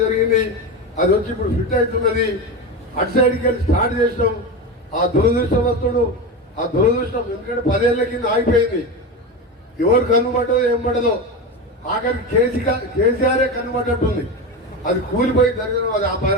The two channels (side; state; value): both; normal; correlation 0.20